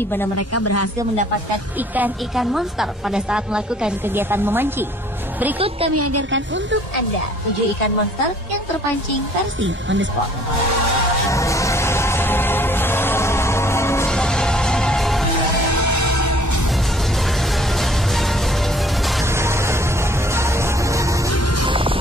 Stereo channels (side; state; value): both; normal; correlation 0.57